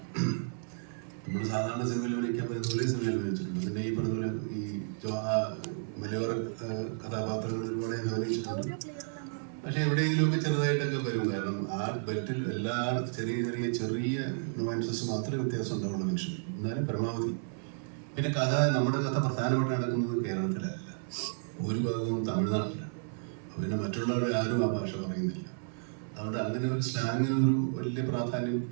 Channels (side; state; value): left; silent; 56 dB below the other